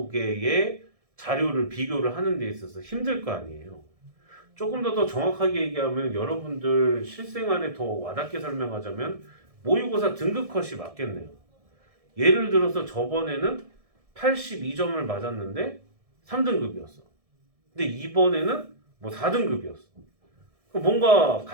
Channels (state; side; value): late; left; 1.6 ms